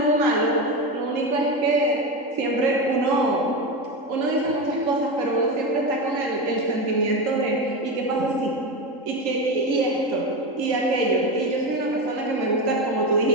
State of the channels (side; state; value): left; late; 3.8 ms